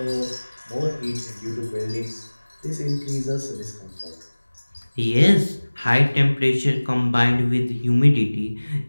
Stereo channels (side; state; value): both; inverted; correlation -1.00